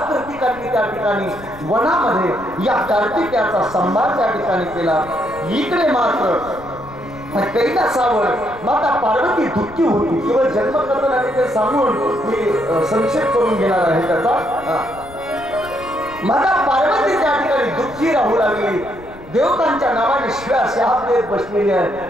कृतिकांनी त्या ठिकाणी वनामध्ये या कार्तिकेयाचा संभार त्या ठिकाणी केला. इकडे मात्र कैलासावर माता पार्वती दुःखी होती. केवळ जन्मकथन आणि ते सांगून मी संक्षेप करून घेणार आहे त्याचा. माता पार्वती त्या ठिकाणी दुःखी राहू लागली. देवतांच्या नावाने शिव्या शाप देत बसलेली आहे.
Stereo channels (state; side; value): noise; left; rumble, 20 dB below the sound